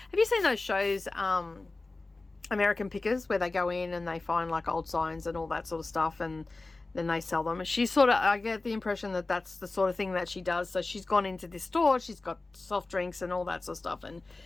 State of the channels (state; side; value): quieter; right; 3.3 dB